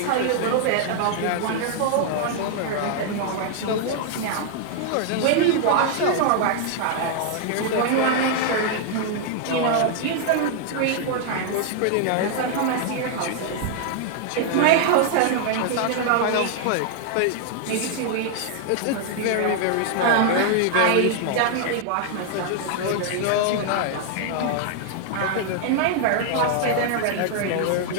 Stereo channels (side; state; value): both; different; correlation -0.01